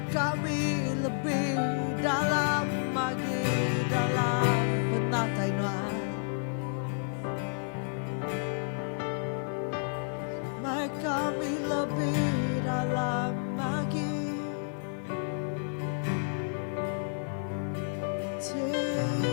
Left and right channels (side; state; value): right; silent; digital silence